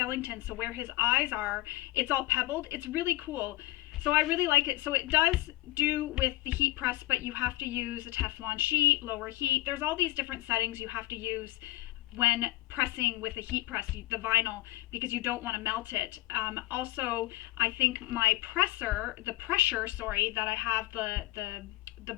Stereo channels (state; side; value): quieter; right; 17.3 dB